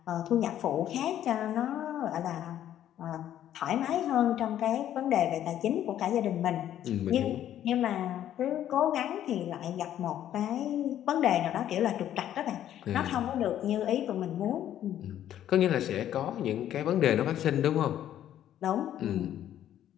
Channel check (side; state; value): right; quieter; 11.3 dB